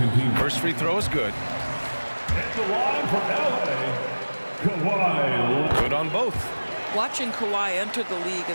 team. First free throw is good. At the line for LA, Kawhi. Good on both. Watching Kawhi enter the league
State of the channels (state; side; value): inverted; both; correlation -1.00